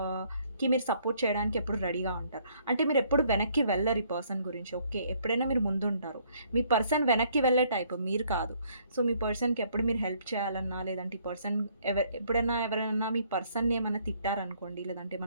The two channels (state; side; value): inverted; both; correlation -0.65